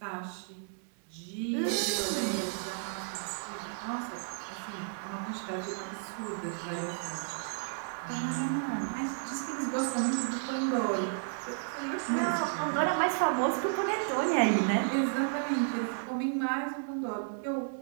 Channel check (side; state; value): left; silent; digital silence